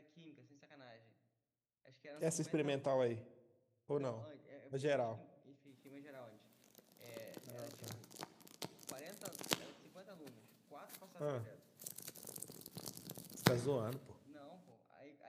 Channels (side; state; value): both; identical; correlation 1.00